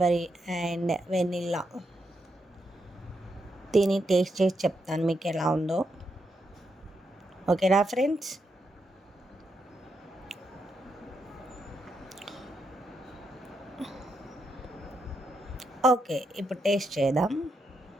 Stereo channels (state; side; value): normal; both; correlation 0.82